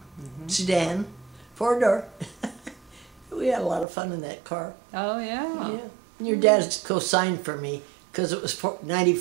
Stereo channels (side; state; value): left; drops out; at 3.9 s